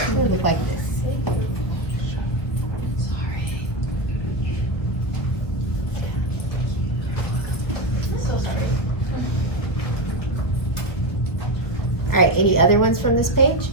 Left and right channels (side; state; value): right; late; 1.5 ms